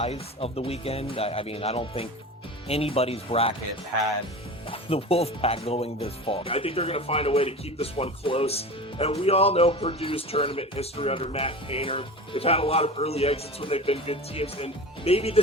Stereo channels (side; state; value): both; normal; correlation 0.33